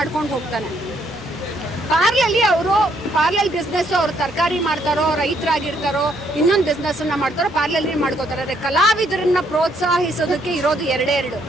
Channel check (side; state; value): both; normal; correlation 0.70